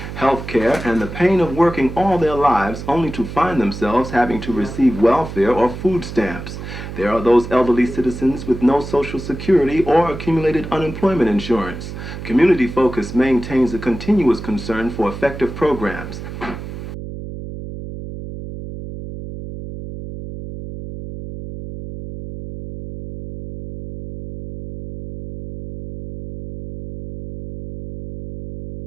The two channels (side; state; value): right; noise; hum, 9 dB below the sound